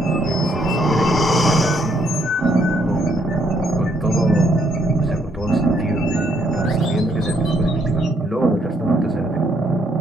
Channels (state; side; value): normal; both; correlation 0.71